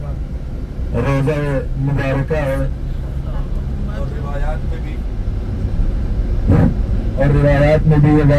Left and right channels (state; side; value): identical; both; correlation 1.00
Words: रोज़ा मुबारका है, और रिवायात में भी ये